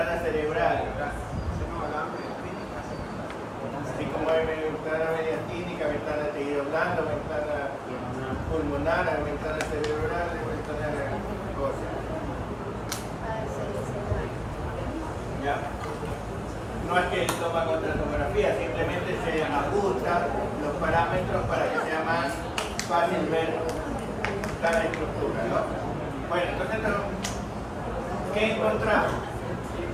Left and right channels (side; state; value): both; identical; correlation 1.00